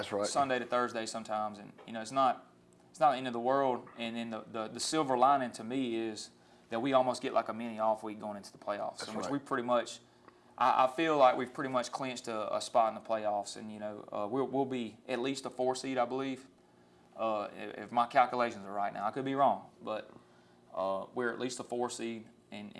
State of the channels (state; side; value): identical; both; correlation 1.00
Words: Sunday to Thursday sometimes, and you know, it's not the end of the world. And then the silver lining to me is that we almost get like a mini off week going into the playoffs, in which we pretty much I feel like we've pretty much clinched a spot in the playoffs, and we'll be at least a 4 seed, I believe, if my calculations are right. Now I could be wrong, but we're at least a 4 seed, and